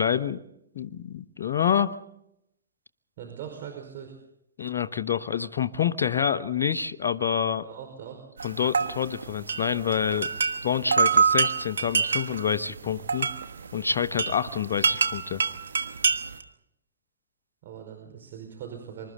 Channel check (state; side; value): inverted; both; correlation -0.61